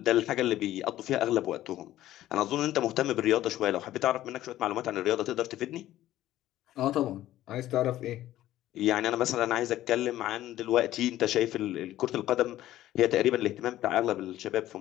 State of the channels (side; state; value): right; quieter; 14.0 dB